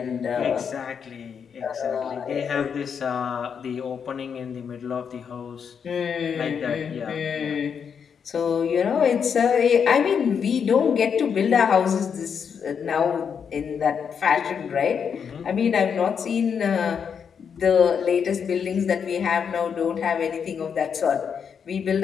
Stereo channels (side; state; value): right; quieter; 7.0 dB